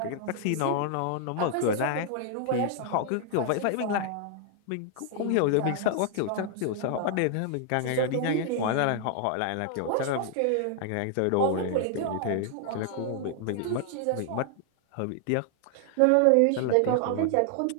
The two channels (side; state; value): both; different; correlation 0.00